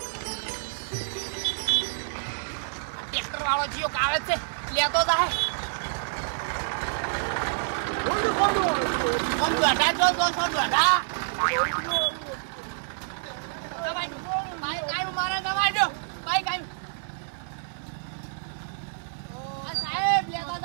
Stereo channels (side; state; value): left; silent; 58 dB below the other